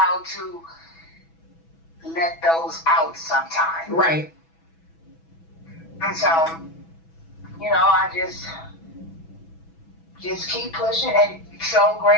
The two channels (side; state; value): right; late; 6.1 ms